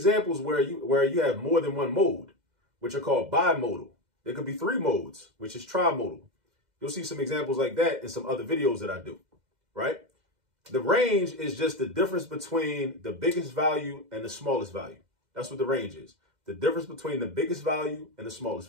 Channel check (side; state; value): left; late; 2.1 ms